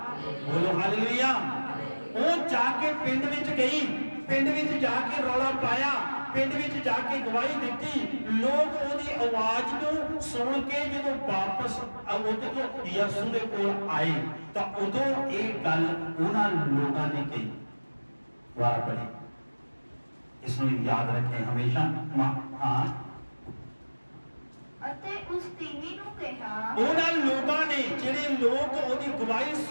ਬੋਲੋ ਹਾਲੇਲੂਇਆ। ਉਹ ਜਾ ਕੇ ਪਿੰਡ ਵਿੱਚ ਗਈ, ਪਿੰਡ ਵਿੱਚ ਜਾ ਕੇ ਰੌਲਾ ਪਾਇਆ, ਪਿੰਡ ਵਿੱਚ ਜਾ ਕੇ ਗਵਾਹੀ ਦਿੱਤੀ। ਲੋਕ ਉਹਦੀ ਆਵਾਜ਼ ਨੂੰ ਸੁਣ ਕੇ ਜਦੋਂ ਵਾਪਸ ਉਹਦੇ ਤੋਂ ਯਿਸੂ ਦੇ ਕੋਲ ਆਏ ਤਾਂ ਉਦੋਂ ਇਹ ਗੱਲ ਉਹਨਾਂ ਲੋਕਾਂ ਨੇ ਕਹੀ। ਵਾਰ ਪੜੀ, इसमें याद रखें हमेशा। हाँ, ਅਤੇ ਉਸ ਤੀਵੀ ਨੂੰ ਕਿਹਾ, ਉਹਨਾਂ ਲੋਕਾਂ ਨੇ ਜਿਹੜੇ ਲੋਕ ਉਹਦੀ ਗਵਾਹੀ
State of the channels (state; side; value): inverted; both; correlation -1.00